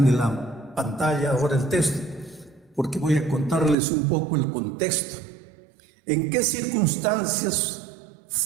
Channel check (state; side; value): drops out; left; at 3.8 s